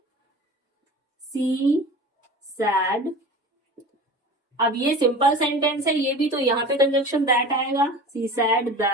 सी सैड। अब ये सिंपल सेंटेंस है ये भी, तो यहाँ पे कंजक्शन दैट आएगा, she said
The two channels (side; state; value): both; normal; correlation 0.36